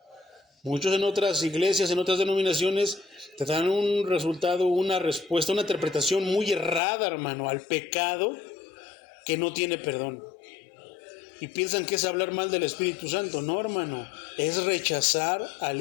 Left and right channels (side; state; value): right; drops out; at 6.8 s